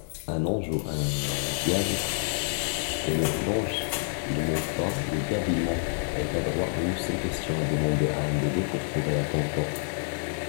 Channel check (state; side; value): silent; right; digital silence